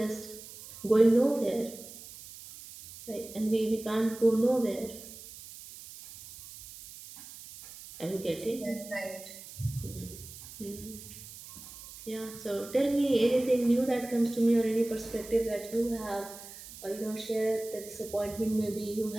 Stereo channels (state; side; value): noise; right; hiss, 15 dB below the sound